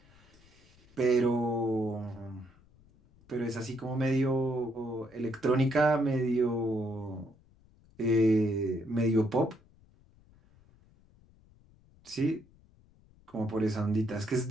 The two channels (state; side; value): noise; left; rumble, 29 dB below the sound